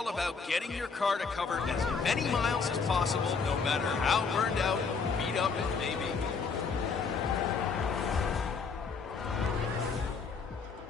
about getting your car to cover as many miles as possible, no matter how burned out or beat up it may be.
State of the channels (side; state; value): right; quieter; 5.1 dB